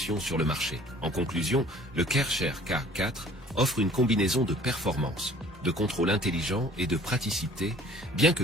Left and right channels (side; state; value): both; normal; correlation 0.51